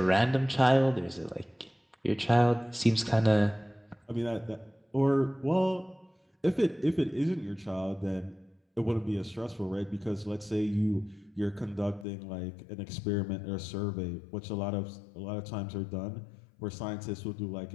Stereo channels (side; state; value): right; drops out; at 12.1 s